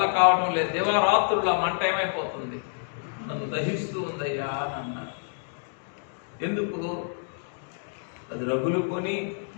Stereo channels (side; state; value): right; silent; 59 dB below the other